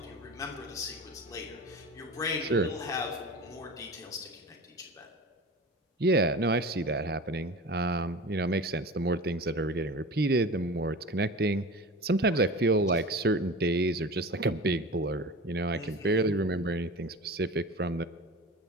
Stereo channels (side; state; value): both; normal; correlation 0.34